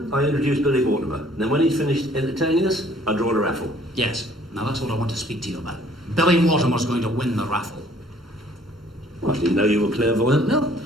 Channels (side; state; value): both; normal; correlation 0.58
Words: I introduce Billy Mortimer. Then when he's finished entertaining us, I draw a raffle. Yes. Now that's what I want to speak to you about. Billy Mortimer's going to win the raffle. Well, I didn't know you were clairvoyant, Mel.